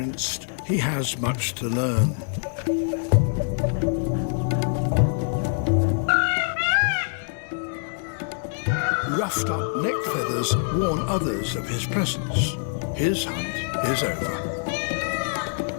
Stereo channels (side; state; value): right; silent; digital silence